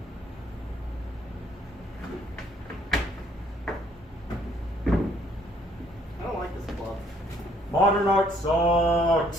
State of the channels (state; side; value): normal; both; correlation 0.64